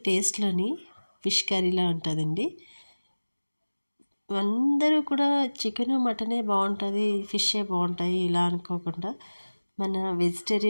టేస్ట్లోని ఫిష్ కర్రీలా ఉంటుందండి. అందరూ కూడా చికెను మటనే బాగుంటుంది, ఫిషే బాగుంటాయి ఇలా అనుకోకుండా మన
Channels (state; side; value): inverted; both; correlation -1.00